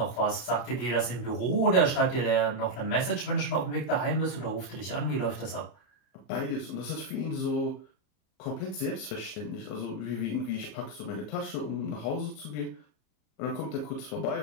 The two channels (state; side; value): late; right; 34 ms